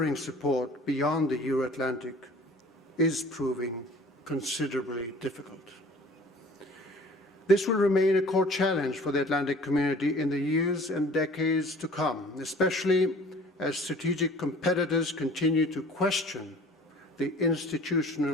support beyond the Euro-Atlantic is proving considerably difficult. This will remain a core challenge for the Atlantic community in the years and decades to come, especially as strategic competitors continue to question the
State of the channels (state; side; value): normal; both; correlation 0.48